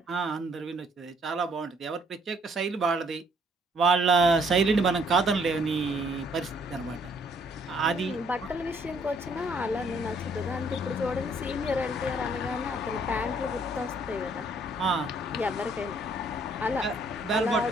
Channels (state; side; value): normal; both; correlation 0.64